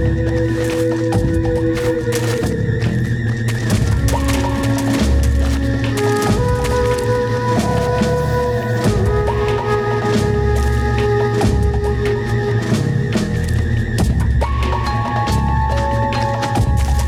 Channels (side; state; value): both; identical; correlation 1.00